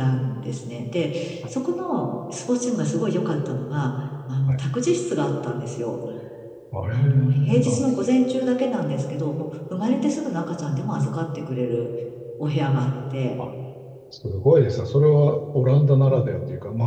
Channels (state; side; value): identical; both; correlation 1.00